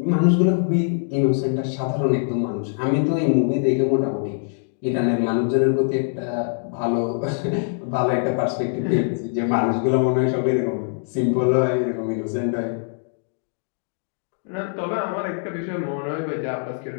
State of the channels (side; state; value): right; silent; digital silence